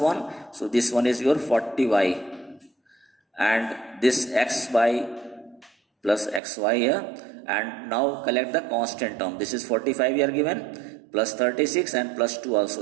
So this one is your 40y. And this xy plus xy here. And now collect the constant term. This is 45 here given, plus 36 and plus 2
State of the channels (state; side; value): drops out; left; at 6.4 s